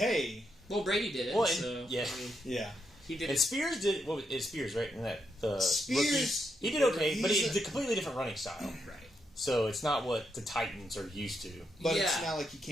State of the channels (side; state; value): both; normal; correlation 0.81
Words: Well, Brady did it. Well, so, yeah, I mean, yeah. He did. And Spears did. What was Spears, right? In that the Spears, rookie, he did okay, but it's a completely different running style. Right. So it's not what the Titans are used to. But it's not like you